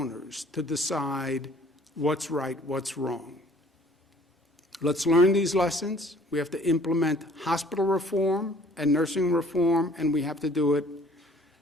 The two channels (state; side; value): normal; both; correlation 0.54